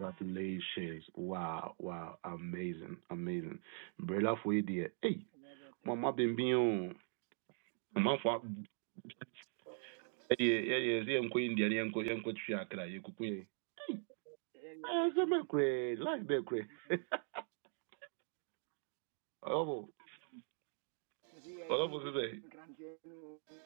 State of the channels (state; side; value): silent; left; 50 dB below the other